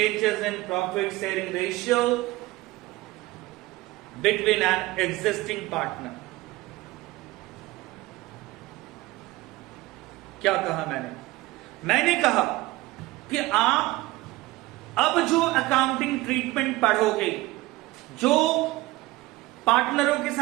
in profit sharing ratio between an existing partner. क्या कहा मैंने कहा कि आप अब जो accounting treatment पढ़ोगे, जो पार्टनरों के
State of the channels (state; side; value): quieter; left; 19.3 dB